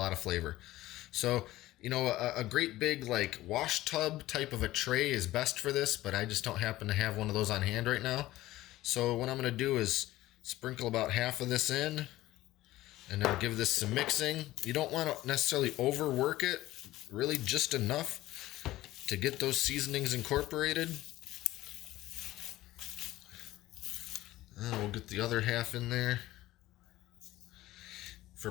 of flavor. So, a great big like wash tub type of a tray is best for this, but I just don't happen to have one of those on hand right now. So what I'm going to do is sprinkle about half of this in, and then give this some mixing. You don't want to necessarily overwork it, really just enough to get those seasonings incorporated. And we'll get the other half in there. For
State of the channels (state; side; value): quieter; right; 16.4 dB